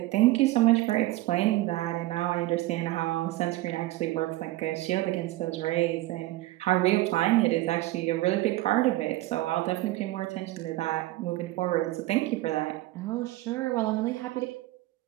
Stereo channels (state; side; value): quieter; left; 17.6 dB